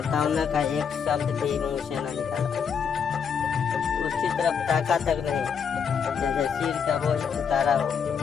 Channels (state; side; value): quieter; right; 6.8 dB